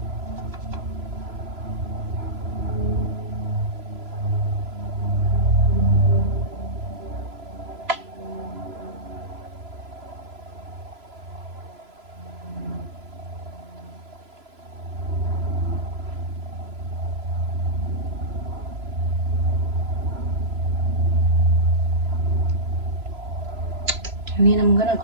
And then I'm gonna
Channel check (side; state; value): left; late; 3.0 ms